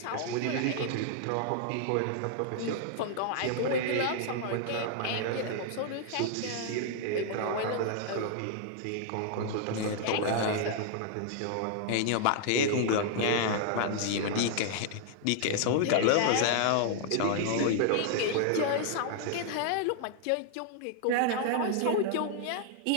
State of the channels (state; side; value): different; both; correlation 0.00